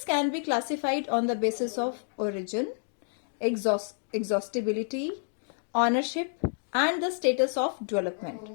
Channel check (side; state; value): right; silent; digital silence